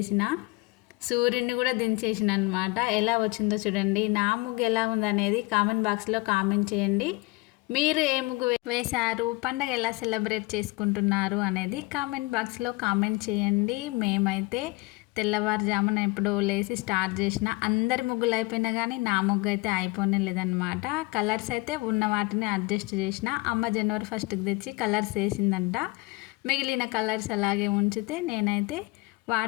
సూర్యుడిని కూడా దించేసిన అనమాట. ఎలా వచ్చిందో చూడండి. నా ముగ్గు ఎలా ఉందనేది కామెంట్ బాక్స్లో కామెంట్ చేయండి. మీరు ఏ ముగ్గు వేశారు, పండగ ఎలా సెలబ్రేట్ చేసుకుంటున్నారు అనేది కామెంట్ బాక్స్లో కామెంట్ చేయండి. మేమైతే తెల్లవారుజామున ఎప్పుడో లేసి స్టార్ట్ చేసిన. అందరి ముగ్గులు అయిపోయినా కానీ నా ముగ్గు అయితే అయిపోనే లేదనమాట. కలర్స్ అయితే ఉన్న వాటిని అడ్జస్ట్ చేసిన. అమ్మ జనవరి 1కి తెచ్చి కలర్స్ వేసిందంట. మిగిలిన కలర్స్ అలాగే ఉంచితే నేనైతే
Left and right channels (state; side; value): quieter; right; 24.1 dB